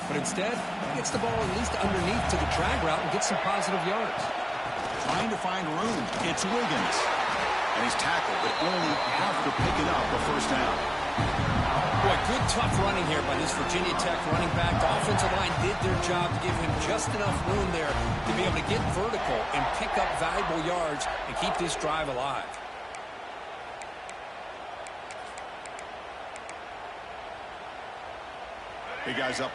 But instead, he gets the ball at least underneath to the drag route and gets some positive yards. Trying to find room. It's Wiggins. And he's tackled, but only after picking up a first down. Boy, good tough running here by this Virginia Tech running back. The offensive line did their job to give him just enough room there to be able to get vertical and pick up valuable yards and keep this drive alive. Big guys up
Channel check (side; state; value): both; identical; correlation 1.00